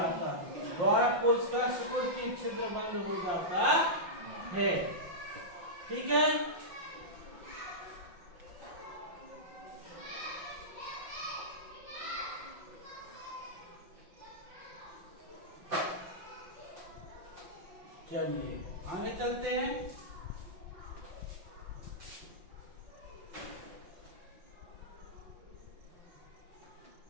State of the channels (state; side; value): late; left; 5.7 ms